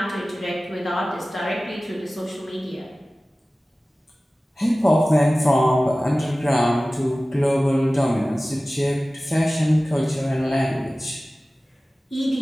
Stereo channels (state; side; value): normal; both; correlation 0.97